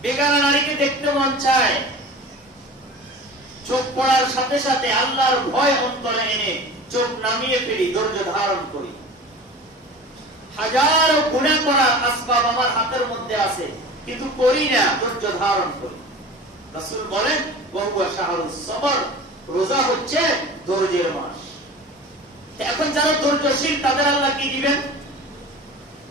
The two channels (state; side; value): normal; both; correlation 0.37